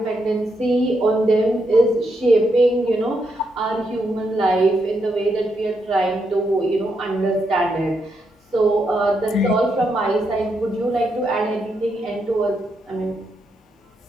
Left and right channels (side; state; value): both; normal; correlation 0.80